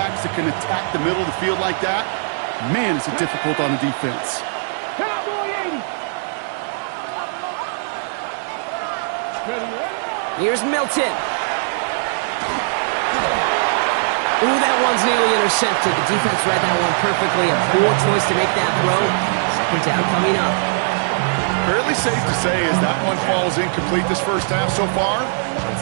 that can attack the middle of the field like that, man, is it difficult on the defense. Cowboy 80. Here's Milton. Ooh, that one's nearly intercepted. The defense read that one perfectly. A poor choice to make that throw. Second down coming up. Fairly safe to say as that one falls incomplete this first half so far,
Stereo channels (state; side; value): silent; left; digital silence